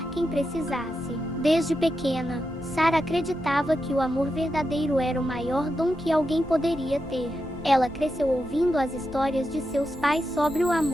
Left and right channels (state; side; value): noise; left; hum, 22 dB below the sound